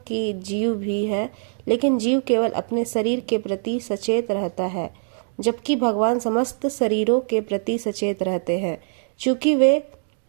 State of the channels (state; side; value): silent; left; digital silence